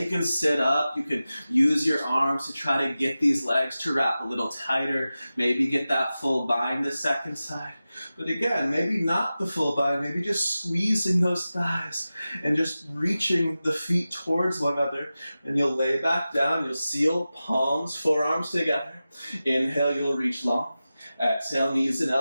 can sit up, you can use your arms to try to get these legs to wrap a little tighter, maybe get that full bind the second side. But again, maybe not the full bind, maybe just squeezing those thighs and just reaching the feet towards one another. And you'll lay back down, you'll seal palms, forearms together. Inhale, you'll reach long. Exhale, knees and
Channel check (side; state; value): both; inverted; correlation -0.95